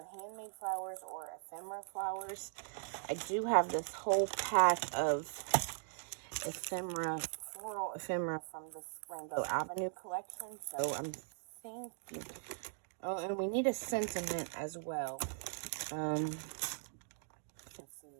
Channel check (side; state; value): left; silent; digital silence